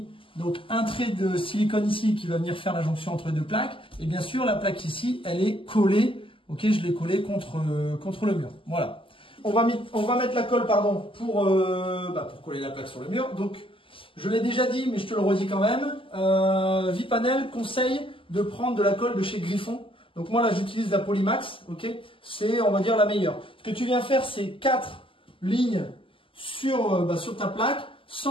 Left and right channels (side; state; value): right; late; 0.25 ms